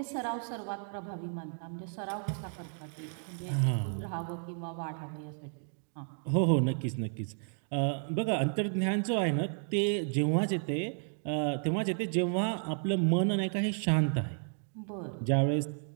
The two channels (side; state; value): left; silent; 56 dB below the other